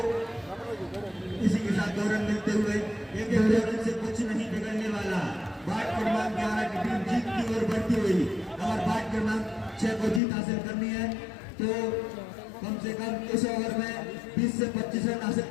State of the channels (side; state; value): right; drops out; at 10.2 s